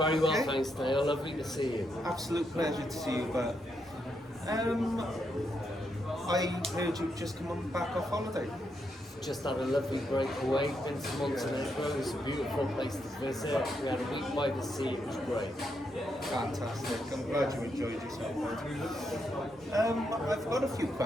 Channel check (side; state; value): both; normal; correlation 0.80